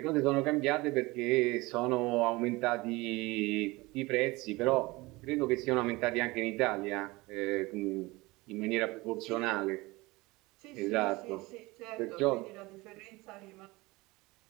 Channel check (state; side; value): quieter; left; 22.2 dB